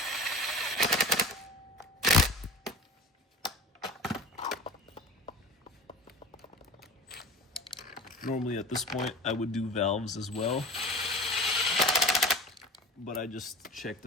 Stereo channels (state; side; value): normal; both; correlation 0.36